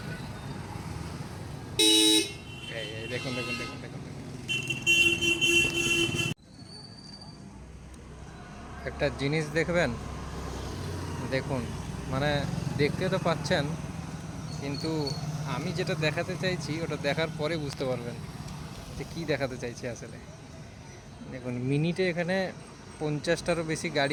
এই দেখুন দেখুন দেখুন দেখুন দেখুন। একটা জিনিস দেখবেন, দেখুন, মানে দেখতে তো পাচ্ছেন, কিন্তু আমি যেটা দেখাতে চাইছি ওটা দেখার পরে বুঝতে পারবেন যে কী দেখাতে চাইছি আসলে। দেখুন, মিনিটে এখানে 50টারও বেশি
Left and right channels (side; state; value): both; identical; correlation 1.00